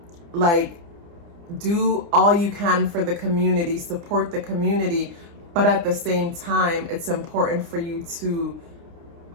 like, do all you can for the community, support the community, but at the same time, it's important for you to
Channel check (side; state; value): left; late; 29 ms